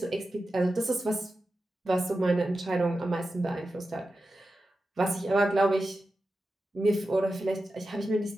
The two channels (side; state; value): both; normal; correlation 0.92